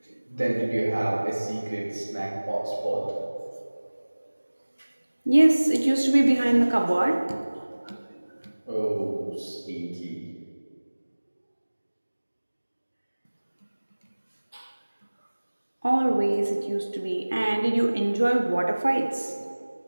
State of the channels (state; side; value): inverted; both; correlation -1.00